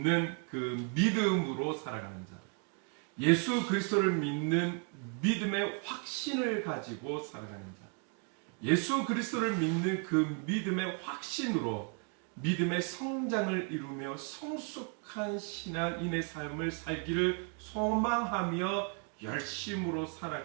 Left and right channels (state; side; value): quieter; left; 38.0 dB